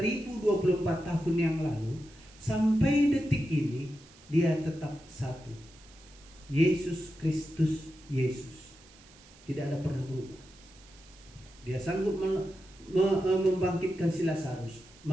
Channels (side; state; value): right; noise; hiss, 24 dB below the sound